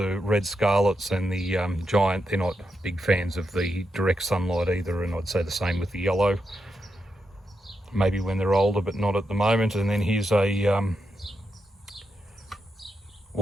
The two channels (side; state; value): both; normal; correlation 0.85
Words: red scarlets and the giant, they're not big fans of the direct sunlight either, and I'd say the same with the yellow. Maybe when they're older, but not at the moment. And then here's a